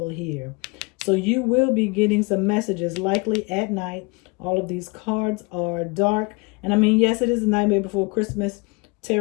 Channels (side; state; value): right; quieter; 28.1 dB